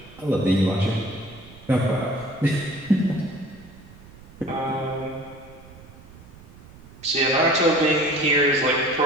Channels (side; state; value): right; noise; rumble, 21 dB below the sound